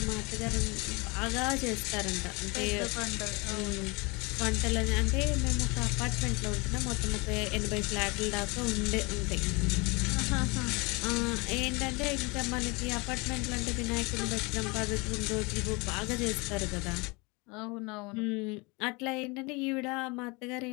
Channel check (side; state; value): right; quieter; 27.5 dB